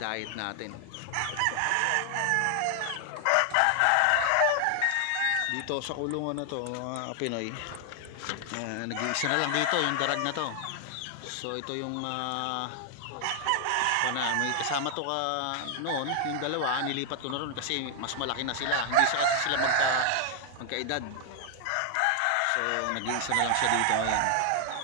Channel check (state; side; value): different; both; correlation 0.00